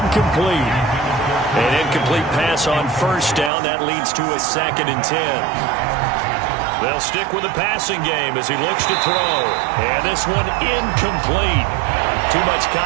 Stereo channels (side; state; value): left; drops out; at 3.5 s